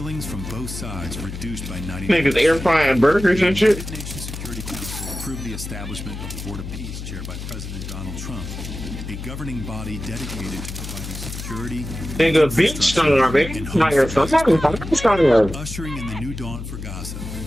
from both sides reduced by 90%. Niggas air frying burgers and shit. The United Nations Security Council approved the establishment of the Board of Peace, chaired by President Donald Trump, a governing body dedicated to providing security, nigga, bitch starving. Ushering in the new dawn for Gaza.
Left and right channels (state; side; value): noise; left; hum, 8 dB below the sound